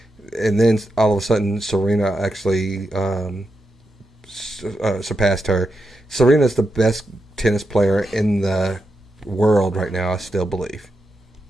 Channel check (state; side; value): normal; both; correlation 0.87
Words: And then all of a sudden, Serena actually surpassed her. Serena's the best tennis player in the world right now, I still believe.